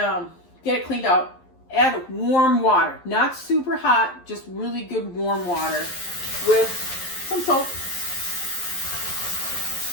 get it cleaned out. Add warm water, not super hot, just really good warm water with some soap.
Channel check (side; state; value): right; late; 11 ms